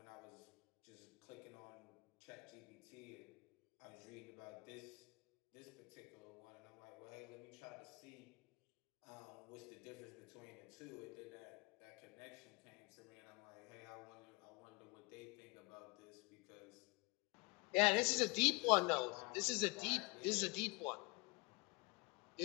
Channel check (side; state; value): right; quieter; 27.8 dB